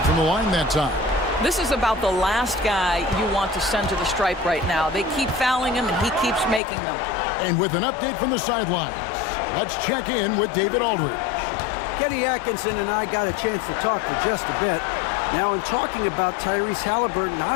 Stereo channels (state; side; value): drops out; right; at 6.6 s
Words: from the line that time. This is about the last guy you want to send to the stripe right now. They keep fouling him, and he keeps making them. And with an update from the sidelines, let's check in with David Aldridge. Kenny Atkinson and I got a chance to talk for just a bit. Now, in talking about Tyrese Halliburton, I